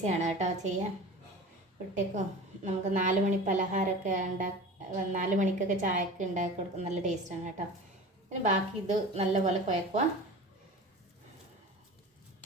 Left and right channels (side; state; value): both; normal; correlation 0.36